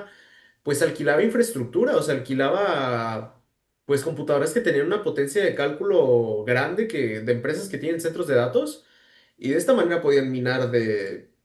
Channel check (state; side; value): identical; both; correlation 1.00